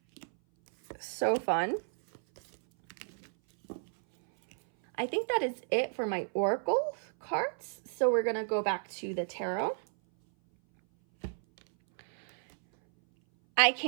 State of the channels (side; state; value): left; silent; 56 dB below the other